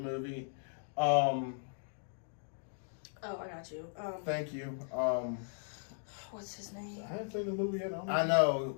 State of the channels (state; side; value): silent; right; digital silence